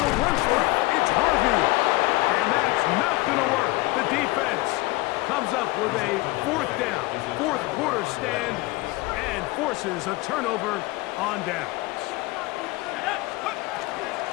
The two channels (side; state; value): right; quieter; 21.4 dB